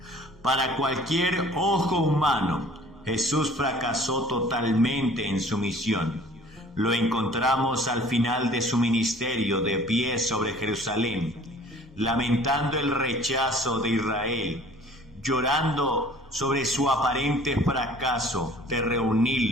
Para cualquier ojo humano, Jesús fracasó totalmente en su misión. Lo encontramos al final de su ministerio, de pie sobre Jerusalén, lamentando el rechazo de Israel, llorando sobre su aparente fracaso de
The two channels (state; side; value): normal; both; correlation 0.50